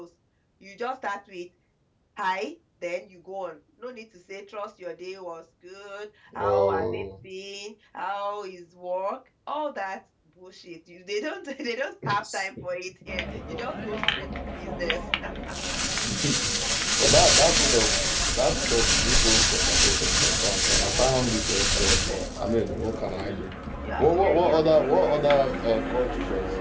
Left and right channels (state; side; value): identical; both; correlation 1.00